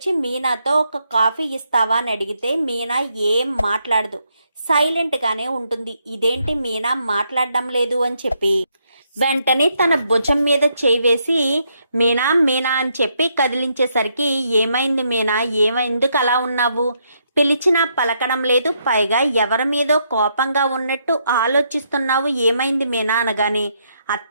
మీనాతో ఒక కాఫీ ఇస్తావా అని అడిగితే మీనా ఏం మాట్లాడదు, సైలెంట్గానే ఉంటుంది. ఇదేంటి మీనా మాట్లాడడం లేదు అని చెప్పి వెంటనే తన భుజం మీద చేయి వేసి మీనా మీనా అని చెప్పి కదిలించేసరికి ఏమైంది మీనా, ఎందుకు అలా ఉన్నావు, పిలిచినా పలకడం లేదు, పైగా ఎవరి మీదో కోపంగా ఉన్నట్టు ఆలోచిస్తున్నావు, ఏమైంది మీనా అనగానే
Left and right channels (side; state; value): both; inverted; correlation -0.76